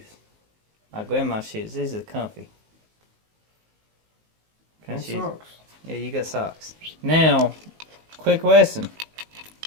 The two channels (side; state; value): left; late; 19 ms